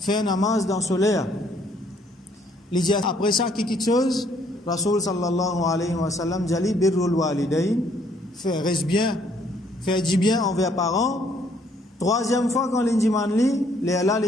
namaz dans solaire. Il dit après ça quelque chose Rasul sallallahu alayhi wa sallam dit birrul walidain, faire reste bien, faire du bien envers parents. Troisième fois quand l'indiman li, là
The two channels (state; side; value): normal; both; correlation 0.66